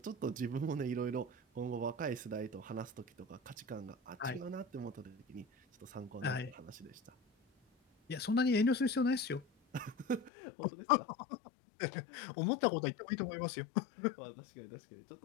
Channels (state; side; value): drops out; right; at 10.3 s